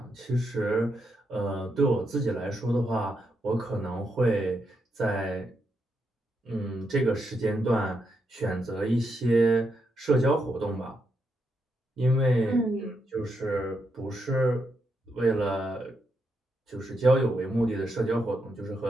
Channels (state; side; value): normal; both; correlation 0.81